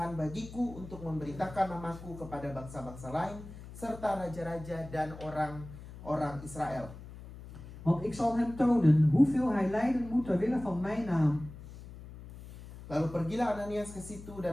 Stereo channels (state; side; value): noise; left; hum, 15 dB below the sound